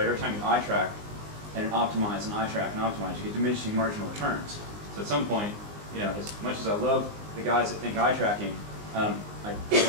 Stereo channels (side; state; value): left; late; 19 ms